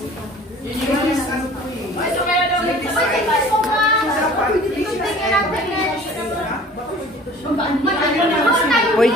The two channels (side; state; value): both; normal; correlation 0.47